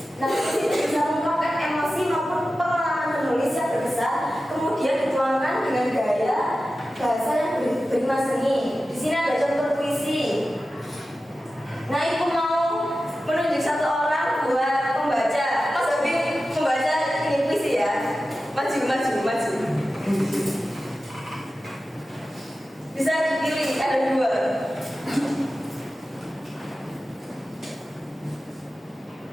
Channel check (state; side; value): normal; both; correlation 0.94